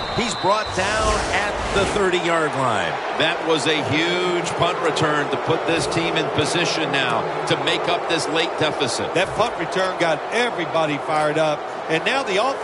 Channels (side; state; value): both; identical; correlation 1.00